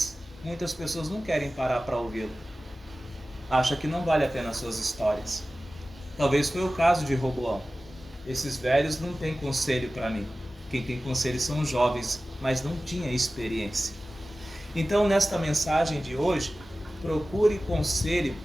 muitas pessoas não querem parar para ouvi-lo. Acha que não vale a pena as suas histórias. Talvez foi o caso de Roboão. Esses velhos não têm conselho para mim. Quem tem conselho são os jovens, mas não tinha experiência. Então, nesta mensagem de hoje, procure conselho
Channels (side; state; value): both; normal; correlation 0.96